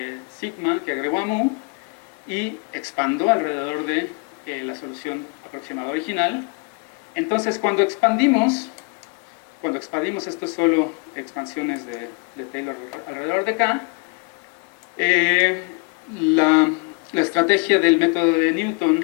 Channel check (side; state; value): right; quieter; 32.2 dB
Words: sigma que agrego a mu, y expando alrededor de la solución aproximada original. Entonces cuando expandimos, esto es solo expansiones de Taylor alrededor de K, la estrategia del método de